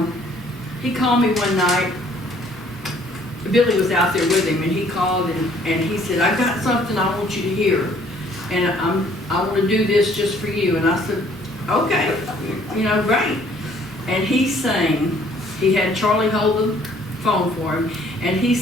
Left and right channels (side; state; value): both; normal; correlation 0.60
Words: he called me one night. Billy was out there with him, and he called and he said, I've got something I want you to hear, and I want to do this just for you. And I said, okay, you know, great. And he sang, he had Charlie hold the phone for him, and he